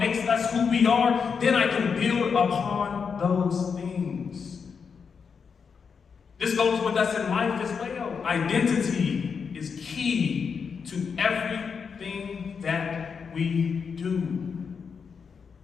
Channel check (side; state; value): right; quieter; 6.0 dB